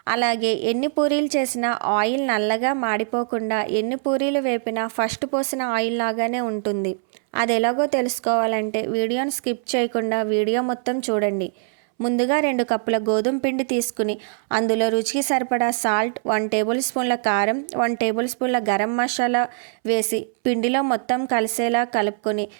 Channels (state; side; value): silent; left; 63 dB below the other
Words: అలాగే ఎన్ని పూరీలు చేసినా ఆయిల్ నల్లగా మాడిపోకుండా, ఎన్ని పూరీలు వేపినా ఫస్ట్ పోసిన ఆయిల్ లాగానే ఉంటుంది. అది ఎలాగో తెలుసుకోవాలంటే వీడియోని స్కిప్ చేయకుండా వీడియో మొత్తం చూడండి. ముందుగా 2 కప్పుల గోధుమ పిండి తీసుకుని అందులో రుచికి సరిపడా సాల్ట్, 1 టేబుల్ స్పూన్ల కారం, 1 టేబుల్ స్పూన్ల గరం మసాలా వేసి పిండిలో మొత్తం కలిసేలా కలుపుకొని